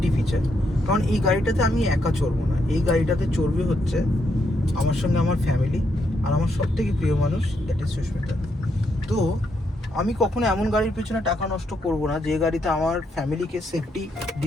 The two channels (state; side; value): normal; both; correlation 0.78